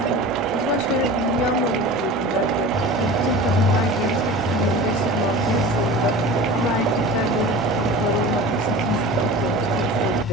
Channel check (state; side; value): normal; both; correlation 0.35